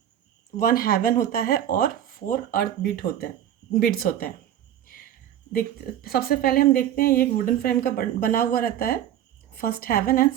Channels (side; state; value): left; quieter; 11.0 dB